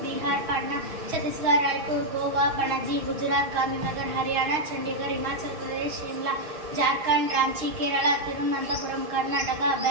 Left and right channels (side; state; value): left; late; 6.3 ms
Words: Bihar Patna Chhattisgarh Raipur Goa Panaji Gujarat Gandhinagar Haryana Chandigarh Himachal Pradesh Shimla Jharkhand Ranchi Kerala Thiruvananthapuram Karnataka